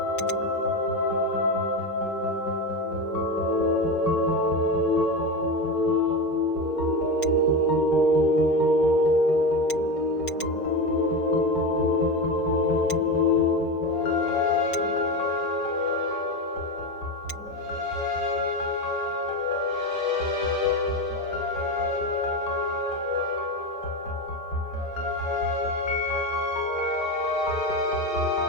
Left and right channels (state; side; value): late; right; 5.3 ms